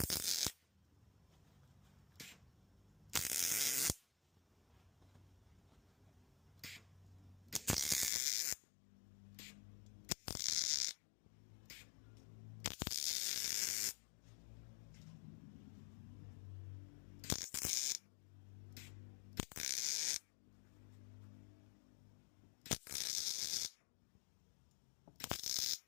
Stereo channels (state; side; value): drops out; right; at 8.1 s